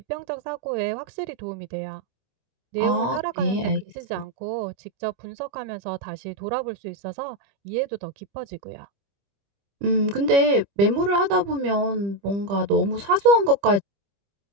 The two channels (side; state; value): left; late; 25 ms